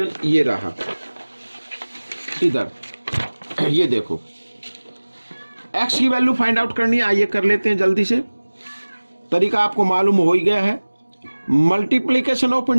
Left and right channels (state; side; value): inverted; both; correlation -1.00